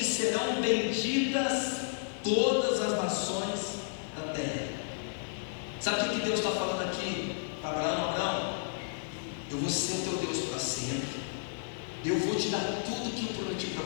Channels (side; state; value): right; silent; 56 dB below the other